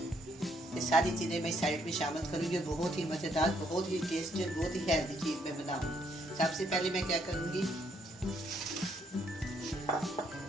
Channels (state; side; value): normal; both; correlation 0.71